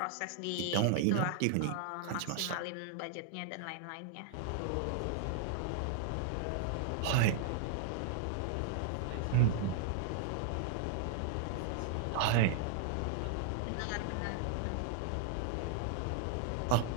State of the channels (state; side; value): different; both; correlation 0.00